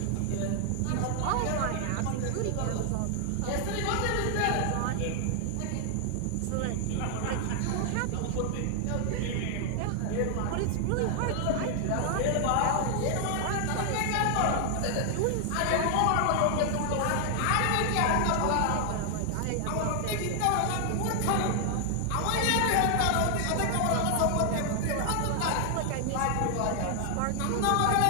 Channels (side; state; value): both; different; correlation 0.00